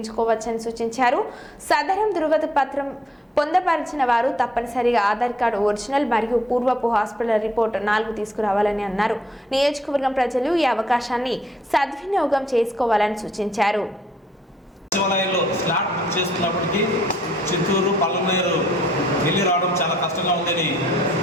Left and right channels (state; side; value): normal; both; correlation 0.68